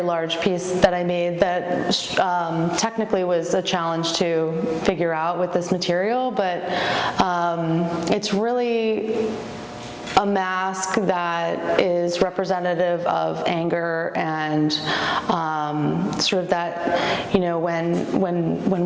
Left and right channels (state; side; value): identical; both; correlation 1.00